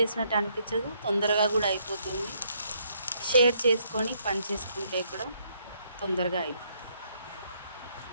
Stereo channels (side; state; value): both; inverted; correlation -0.71